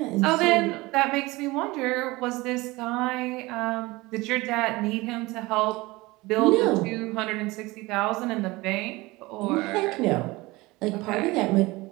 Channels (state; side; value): quieter; left; 21.5 dB